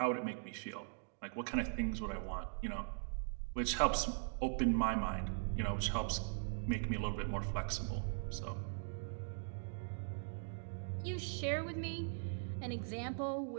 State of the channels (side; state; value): left; silent; digital silence